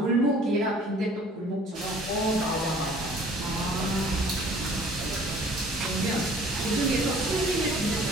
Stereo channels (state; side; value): normal; both; correlation 0.52